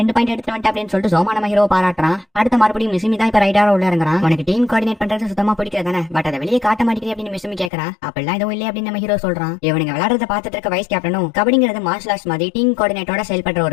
பாயிண்ட் எடுத்து வந்துட்ட அப்படின்னு சொல்லிட்டு சோமா நம்ம ஹீரோ பாராட்டுறான். அடுத்த மறுபடியும் மிசிமி தான் இப்ப ரைடரா உள்ள இருந்தான். உனக்கு டீம் கோஆர்டினேட் பண்றது சுத்தமா பிடிக்காதானே, பட் அதை வெளியே காட்ட மாட்டேங்குது அப்படின்னு மிசிமி கேக்குறான். அப்பெல்லாம் எதுவும் இல்லையே அப்படின்னு நம்ம ஹீரோ சொல்றான். இவனுங்க விளையாடுறத பார்த்துட்டு இருக்க வைஸ் கேப்டனும் கபடிங்கிறது மார்ஷல் ஆர்ட்ஸ் மாதிரி டீம் கோஆர்டினேட்டோட செயல்படுற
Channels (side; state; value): right; drops out; at 7.7 s